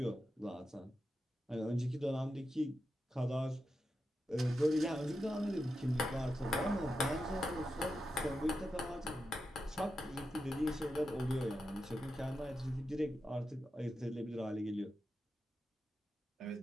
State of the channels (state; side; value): normal; both; correlation 0.89